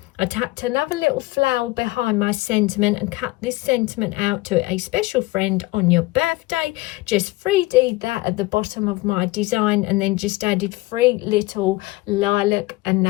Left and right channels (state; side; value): quieter; right; 20.5 dB